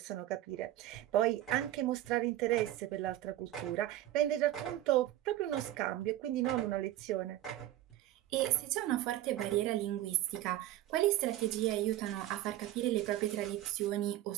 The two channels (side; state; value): left; quieter; 14.0 dB